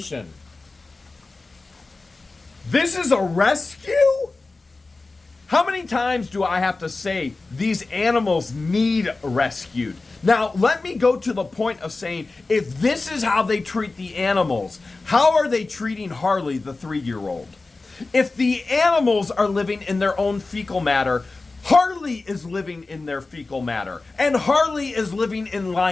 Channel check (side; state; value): right; quieter; 3.5 dB